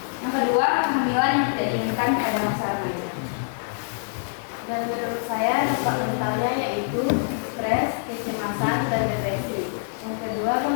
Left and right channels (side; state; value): right; silent; 62 dB below the other